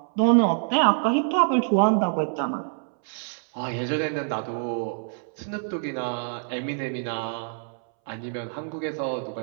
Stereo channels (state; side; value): silent; left; 61 dB below the other